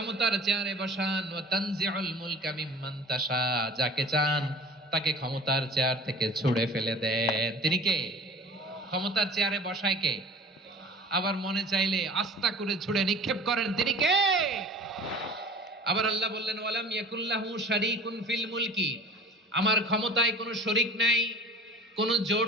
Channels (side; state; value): both; normal; correlation 0.42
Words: চেয়ারে বসান, ওয়া তানজিউল মুলকা মিম্মান তাশা, যাকে চান তাকে ক্ষমতার চেয়ার থেকে ছুঁড়ে ফেলে দেন। তিনি কে? ক্ষমতার চেয়ারে বসায় কে? আবার মনে চাইলে আস্থা করে ছুঁড়ে নিক্ষেপ করেন, তিনি কে? আবার আল্লাহ বললেন, ওয়ালাম ইয়াকুল্লাহু শারীকুন ফিল মুলকি, আমার ক্ষমতায় কোনো শরীক নাই, কোনো